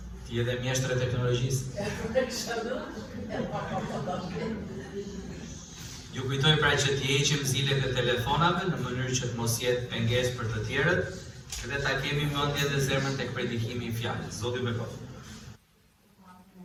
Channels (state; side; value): identical; both; correlation 1.00